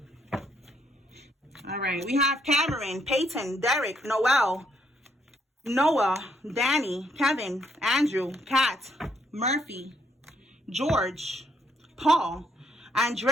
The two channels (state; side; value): normal; both; correlation 0.72